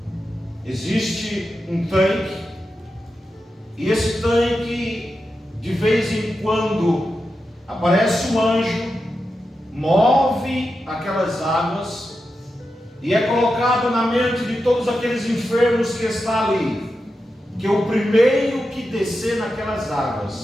existe um tanque, e esse tanque, de vez em quando, aparece um anjo, move aquelas águas, e é colocado na mente de todos aqueles enfermos que está ali, que o primeiro que descer naquelas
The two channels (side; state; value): both; normal; correlation 0.89